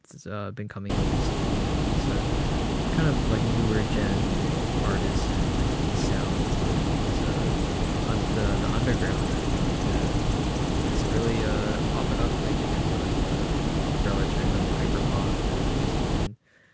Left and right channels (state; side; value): identical; both; correlation 1.00